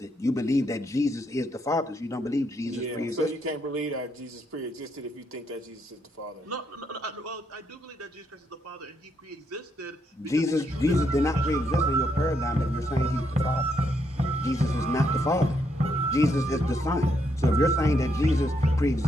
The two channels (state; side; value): normal; both; correlation 0.76